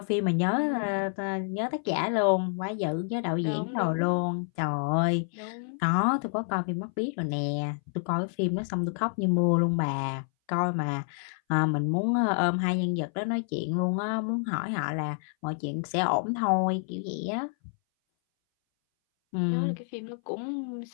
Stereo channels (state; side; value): silent; right; 59 dB below the other